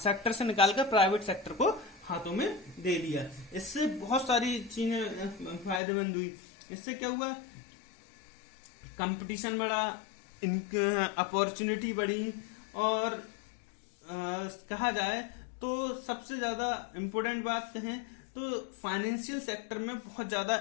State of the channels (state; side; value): drops out; right; at 5.8 s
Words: से निकालकर प्राइवेट सेक्टर को हाथों में दे दिया। इससे बहुत सारी चीजें फायदेमंद हुई। इससे क्या हुआ, कंपटीशन बढ़ा, अपॉर्चुनिटी बढ़ी और कहा जाए तो सबसे ज्यादा इम्पोर्टेंट बात कहें तो फाइनेंशियल सेक्टर में बहुत